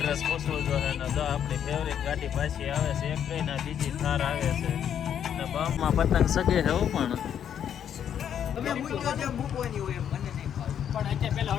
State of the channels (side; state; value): right; quieter; 9.1 dB